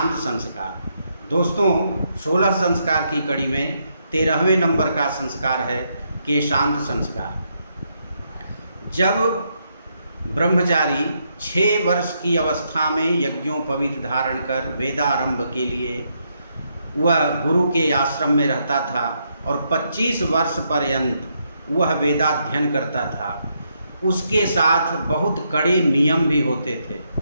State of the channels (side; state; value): both; inverted; correlation -0.78